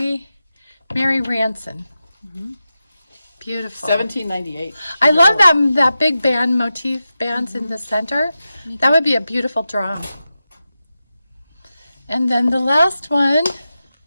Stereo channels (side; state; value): both; inverted; correlation -0.92